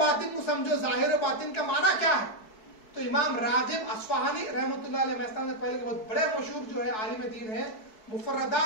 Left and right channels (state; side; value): late; right; 4.7 ms